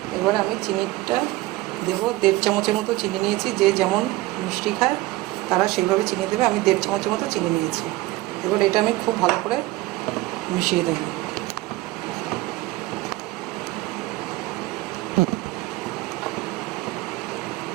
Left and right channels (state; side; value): quieter; left; 18.7 dB